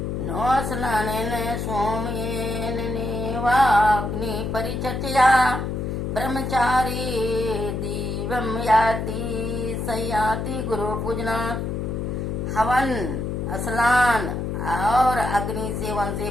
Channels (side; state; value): left; noise; hum, 3 dB below the sound